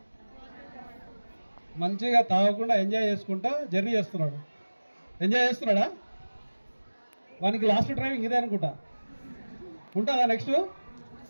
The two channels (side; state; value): both; inverted; correlation -1.00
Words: మంచిగా తాగకుండా ఎంజాయ్ చేసుకుంటా జర్నీ చేస్తున్నాడు. ఎంజాయ్ చేస్తున్నాడా? వానికి లాస్ట్ డ్రైవింగ్ ఇదే అనుకుంటా. ఉంటుందా నెక్స్ట్?